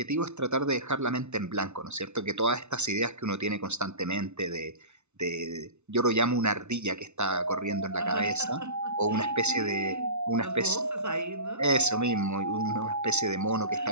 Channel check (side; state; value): left; late; 0.82 ms